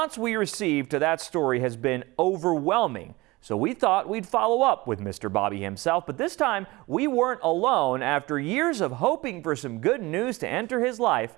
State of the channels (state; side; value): quieter; left; 21.5 dB